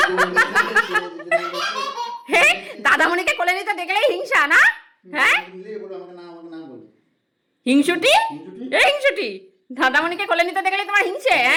হে, দাদামণিকে কোলে নিতে দেখলেই হিংসা না? হ্যাঁ, বলো, আমাকে নাম বলো। হিংসুটি, হিংসুটি? এই হিংসুটি, দাদামণিকে কোলে নিতে দেখলেই তোমার হিংসে?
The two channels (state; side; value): identical; both; correlation 1.00